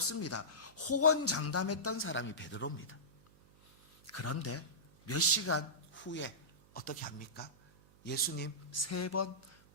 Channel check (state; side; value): noise; right; hum, 27 dB below the sound